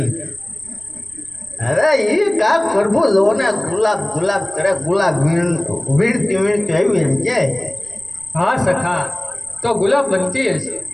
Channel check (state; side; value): noise; right; rumble, 26 dB below the sound